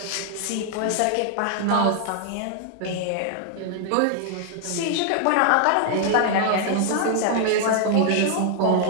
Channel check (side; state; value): both; different; correlation 0.00